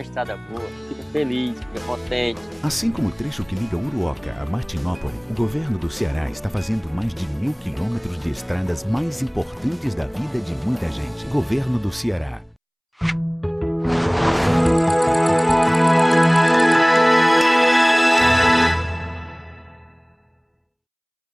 estrada boa, fica feliz, fica contente. Assim como o trecho que liga Uruoca a Martinópole, o governo do Ceará está fazendo mais de 1.000 quilômetros de estradas mais importantes da vida de muita gente. Governo do Ceará.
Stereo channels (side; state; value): both; identical; correlation 1.00